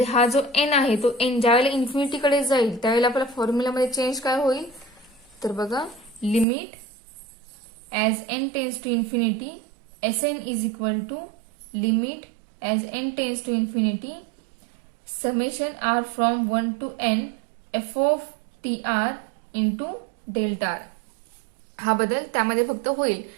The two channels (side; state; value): left; drops out; at 6.5 s